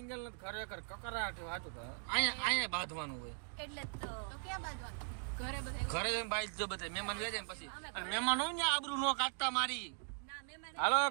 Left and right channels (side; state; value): left; quieter; 39.8 dB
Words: ને ખરેખર કકરાટ વાતું અહીંયા બાંધવાનું હોય. એટલે તો ક્યાં બાંધવાનું? ઘરે બધા ઘરે જઈને બાઈ જો બધા મહેમાન વ્યા જાય પછી. અને મહેમાન હોય ને આબરૂ નો કાઢતા મારી. હાલો